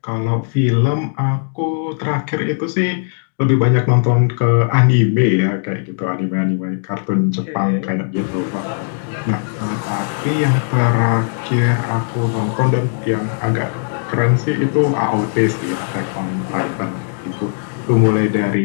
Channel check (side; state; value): right; silent; digital silence